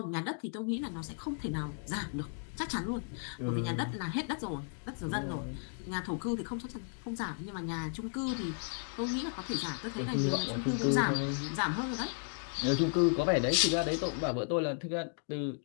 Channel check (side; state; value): right; silent; 55 dB below the other